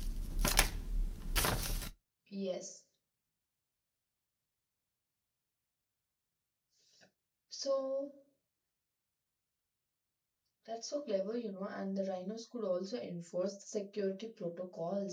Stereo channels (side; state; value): both; identical; correlation 1.00